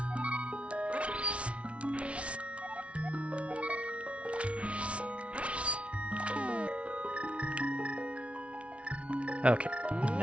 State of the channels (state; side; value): late; left; 0.061 ms